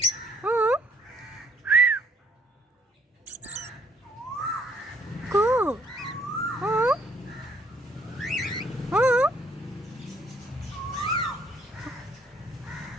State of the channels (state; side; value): normal; both; correlation 0.65